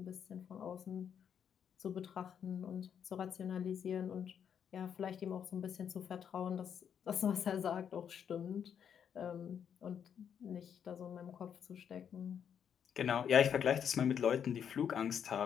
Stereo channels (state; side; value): quieter; right; 8.2 dB